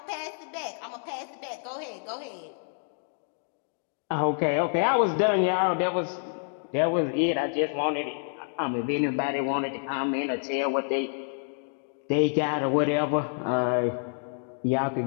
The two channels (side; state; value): right; silent; 59 dB below the other